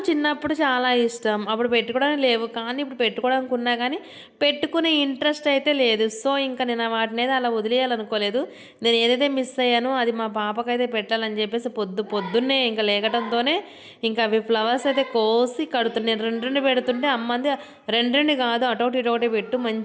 చిన్నప్పుడు చాలా ఇష్టం, అప్పుడు పెట్టుకోవడానికి లేవు, కానీ ఇప్పుడు పెట్టుకోవడానికి ఉన్నా కానీ పెట్టుకునే ఇంట్రెస్ట్ అయితే లేదు. సో ఇంకా నేను వాటిని అయితే అలా వదిలేయాలనుకోలేదు. నేను ఏదైతే మిస్ అయ్యానో అది మా పాపకైతే పెట్టాలని చెప్పేసి పొద్దున్నే ఇంకా లేకటంతోనే ఇంకా అవి ఫ్లవర్స్ అయితే కోసి కడుతున్నాను. 2 పెడుతుంటే అమ్మంది 2 కాదు అటొకటి ఇటొకటి పెట్టు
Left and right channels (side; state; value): both; identical; correlation 1.00